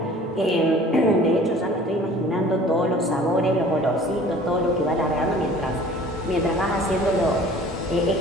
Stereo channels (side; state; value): both; normal; correlation 0.48